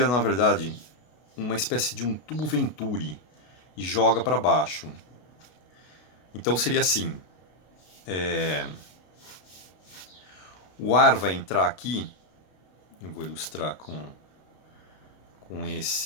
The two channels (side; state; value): right; late; 33 ms